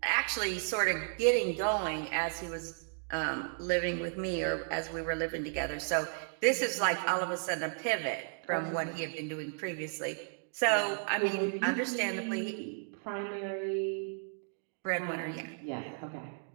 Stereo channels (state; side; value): silent; left; 55 dB below the other